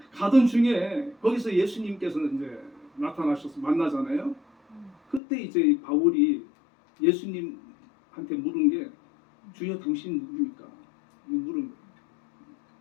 가던 중에 거기서 예수님께서는 이제 나타나셔서 만나잖아요. 그때 이제 바울이 예수님한테 물은 게 주여 당신 누굽니까? 물은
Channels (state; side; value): drops out; right; at 5.2 s